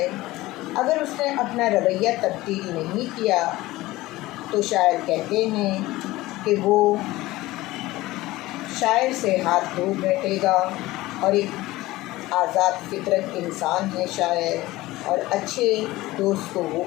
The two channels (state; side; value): quieter; right; 18.2 dB